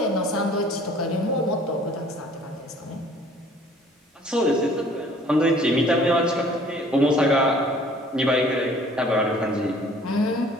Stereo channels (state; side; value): normal; both; correlation 0.54